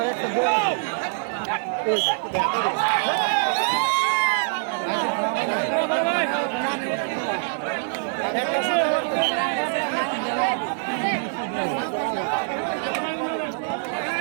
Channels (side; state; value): left; silent; 62 dB below the other